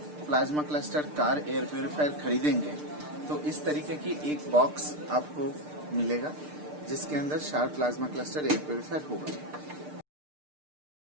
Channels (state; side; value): late; left; 6.7 ms